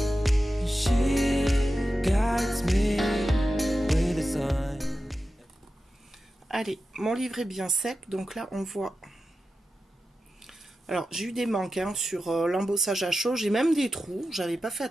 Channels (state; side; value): normal; both; correlation 0.92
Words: she guides me with a sign. Allez, mon livre est bien sec, donc là on voit. Alors j'ai eu des manques hein, sur l'embossage à chaud, j'ai même des trous, j'avais pas fait